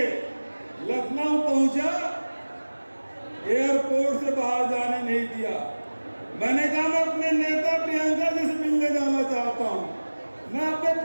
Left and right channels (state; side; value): inverted; both; correlation -1.00